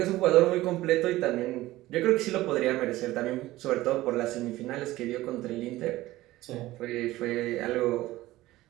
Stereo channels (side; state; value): left; quieter; 17.1 dB